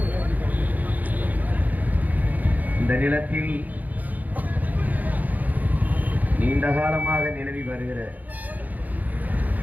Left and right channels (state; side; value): late; left; 0.080 ms